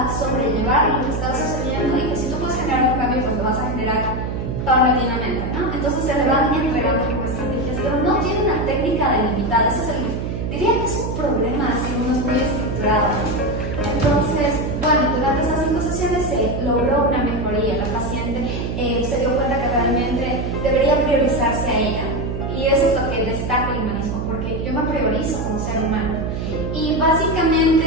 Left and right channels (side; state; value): right; noise; hum, 3 dB below the sound